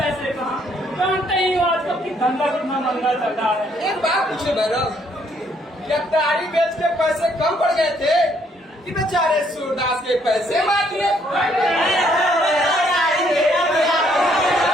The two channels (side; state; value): both; normal; correlation 0.68